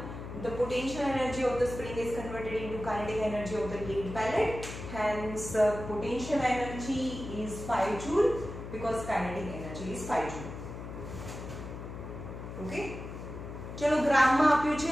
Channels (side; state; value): left; noise; hum, 10 dB below the sound